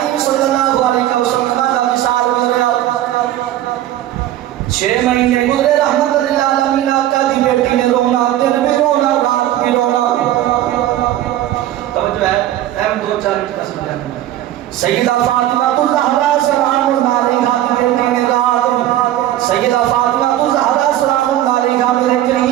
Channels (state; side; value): quieter; left; 13.2 dB